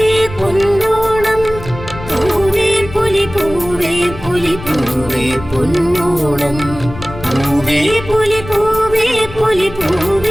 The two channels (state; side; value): noise; left; rumble, 13 dB below the sound